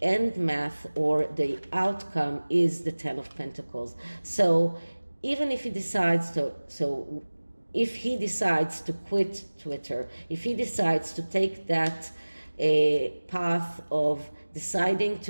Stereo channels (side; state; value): both; inverted; correlation -1.00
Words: end math or the outcome is the Ten of Pentacles. So even if he decides if he decides to quit Twitter, if he decides to take that path of deciding